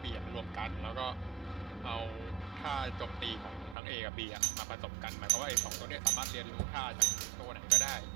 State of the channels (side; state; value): left; drops out; at 3.8 s